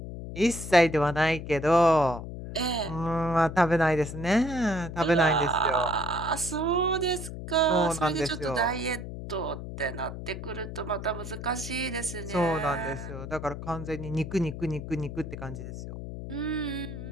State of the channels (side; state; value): left; noise; hum, 9 dB below the sound